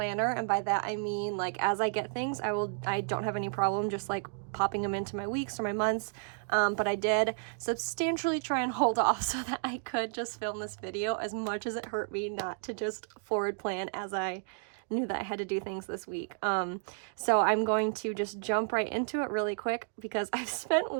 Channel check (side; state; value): left; silent; digital silence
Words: and by that I mean like as I get things, I don't have any problem just like popping them into my weeks or my months. But I did substantially try and hold off so that I could just film this video, as much as it hurt me not to just forward plan as I knew that I had to do things this week. So I'm going to just jump right into it really quick because I've spent